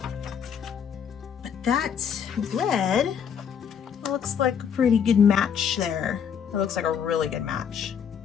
But that red looks like a pretty good match there. It looks like a really good match.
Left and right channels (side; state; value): right; quieter; 7.6 dB